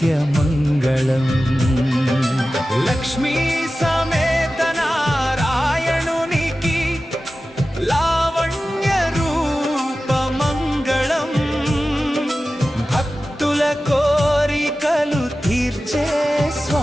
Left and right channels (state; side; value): normal; both; correlation 0.95